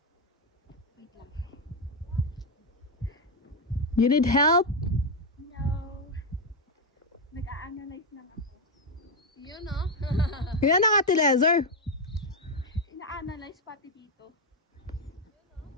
You need help? No. Nag-a-analyze lang ako. Yun, no? Yan ang Ate Lezer. Ina-analyze pati dito.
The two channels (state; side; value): normal; both; correlation 0.05